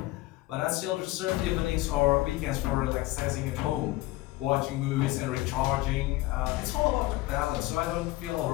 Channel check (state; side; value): quieter; right; 18.2 dB